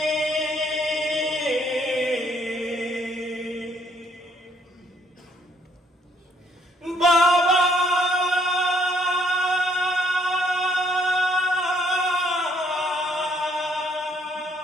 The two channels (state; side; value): normal; both; correlation 0.68